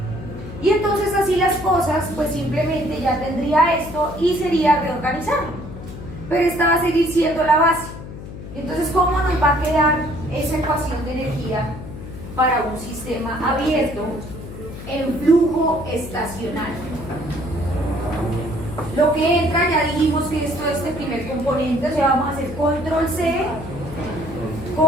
Y entonces así las cosas, pues simplemente ya tendría esto y sería reorganizarlo. Pero esta va a seguir siendo la base. Entonces, ¿cómo nos va a quedar esa ecuación de energía para un sistema abierto en flujo estacionario? Lo que entra, ya dijimos que esto es este primer componente, o sea, vamos a hacer control C,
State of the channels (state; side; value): noise; left; hum, 12 dB below the sound